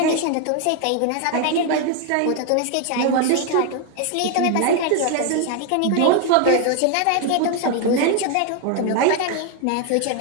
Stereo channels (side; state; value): both; different; correlation 0.01